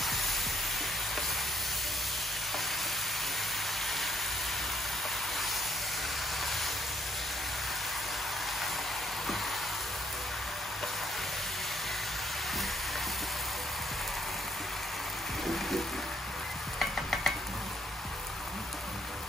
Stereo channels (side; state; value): both; normal; correlation 0.69